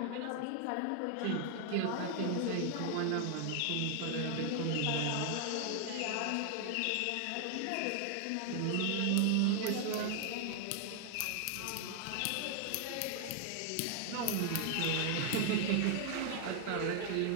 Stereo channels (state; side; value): different; both; correlation 0.00